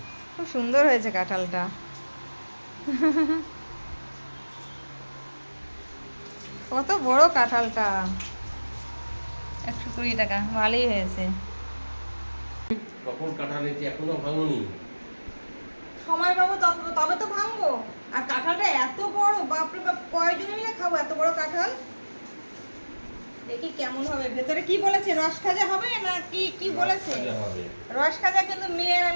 খুব সুন্দর হয়েছে কাঁঠালটা। কত বড় কাঁঠালটা। 120 টাকা ভালোই হয়েছে। কখন কাটা নিয়েছি এখনো ভাঙনি। সময় পাবো তবে তো ভাঙবো। আর কাঁঠালটা এত বড়, বাপরে বাপ, কয়জনে মিলে খাবো এত বড় কাঁঠাল? দেখি কেমন হবে। ভেতরে কি বলেছে, রস খাজা হবে না কি কি বলেছে? রস খাজা কিন্তু মেয়ের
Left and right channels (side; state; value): both; inverted; correlation -1.00